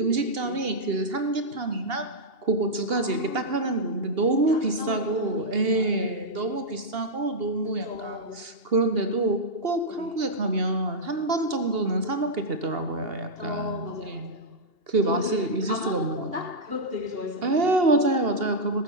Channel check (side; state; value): left; late; 2.8 ms